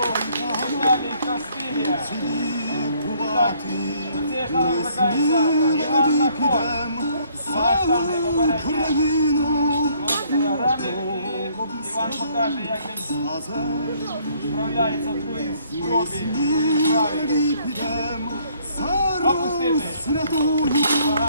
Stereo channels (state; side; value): inverted; both; correlation -0.64